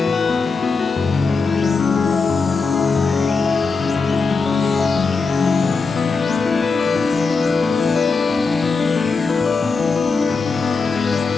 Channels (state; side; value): quieter; right; 4.5 dB